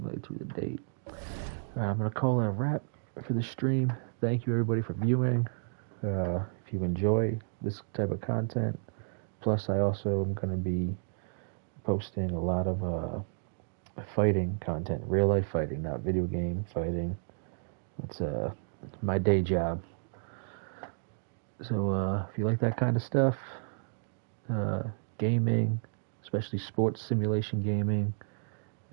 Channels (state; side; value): silent; left; digital silence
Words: through the date. Alright, I'm going to call it a wrap for the stream. Thank you, everybody, for viewing. If you enjoy this type of content, plus I also am going to be posting a lot of fighting content, real life fighting, not video game fighting. It's my day job. So if you like that kind of stuff, gaming, especially sports simulation gaming